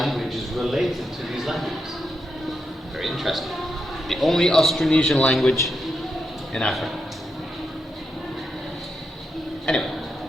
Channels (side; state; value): both; normal; correlation 0.84